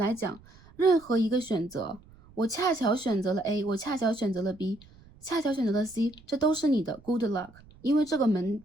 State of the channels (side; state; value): right; noise; rumble, 25 dB below the sound